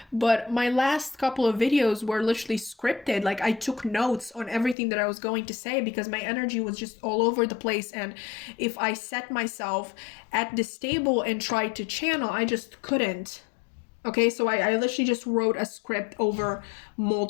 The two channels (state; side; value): drops out; right; at 4.8 s